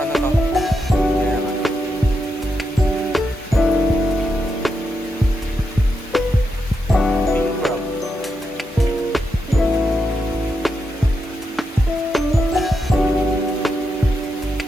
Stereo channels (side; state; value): both; normal; correlation 0.84